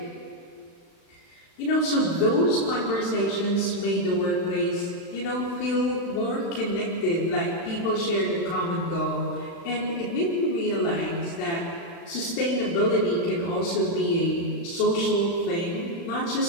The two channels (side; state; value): right; late; 36 ms